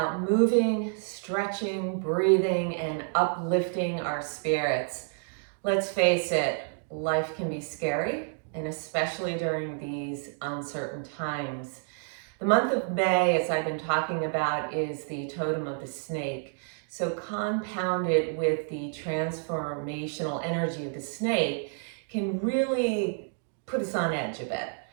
moving, stretching, breathing, and uplifting our spirits. Let's face it, life can be scary, and especially during these uncertain times. The month of May, as I've been talking about, is the totem of the snake. So compounded with the transformational energy of the snake can really put us on edge a bit.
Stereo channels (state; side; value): silent; left; 58 dB below the other